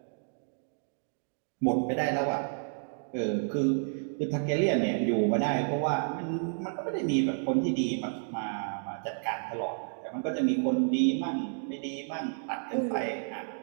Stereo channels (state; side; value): silent; left; digital silence